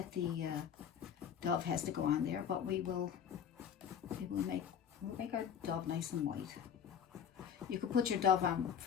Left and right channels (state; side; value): quieter; right; 8.1 dB